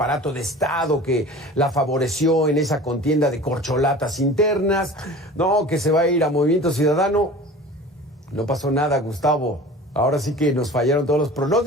de Estado que la favoreció en esa contienda de corcholatas internas, no, que se va a ir a Movimiento Ciudadano. No pasó nada, Gustavo. Ahora sí que nos fallaron todos los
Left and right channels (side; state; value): both; normal; correlation 0.39